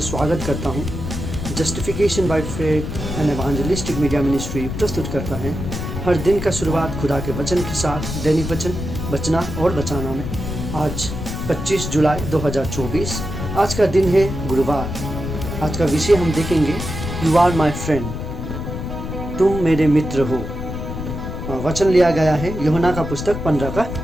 स्वागत करता हूँ। Justification by faith and evangelistic media ministry प्रस्तुत करता है हर दिन का शुरुआत खुदा के वचन के साथ, दैनिक वचन बचना और बचाना में। आज 25 जुलाई 2024, आज का दिन है गुरुवार। आज का विषय हम देखेंगे, यू आर माई फ्रेंड, तुम मेरे मित्र हो। वचन लिया गया है यूहन्ना का पुस्तक 15 का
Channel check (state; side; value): noise; left; rumble, 6 dB below the sound